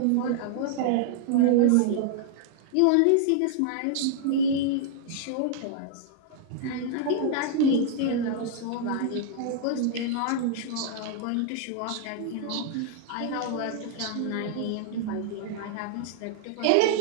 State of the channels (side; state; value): both; different; correlation -0.01